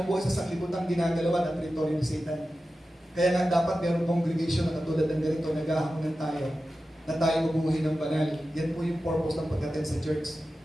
sa sanglibutan ginagalawan ang teritoryo ni Satan. Kaya nga dapat mayroong congregation na katulad ng ganito, naghahaponan tayo, na tayo mabuhay ng banal. Yan po yung purpose ng pag-attend sa church.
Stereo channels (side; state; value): both; normal; correlation 0.93